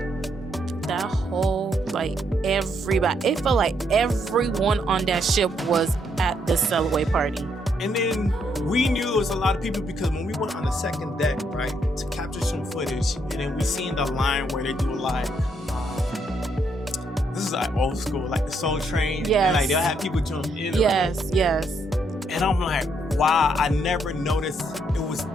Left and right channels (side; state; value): both; normal; correlation 0.74